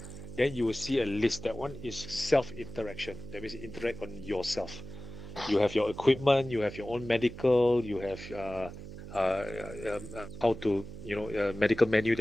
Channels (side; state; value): right; noise; hum, 12 dB below the sound